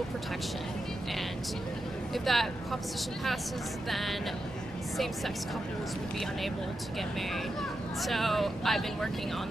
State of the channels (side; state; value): both; normal; correlation 0.88